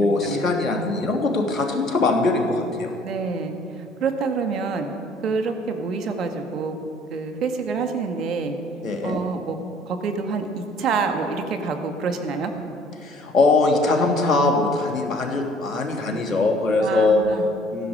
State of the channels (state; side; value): normal; both; correlation 0.57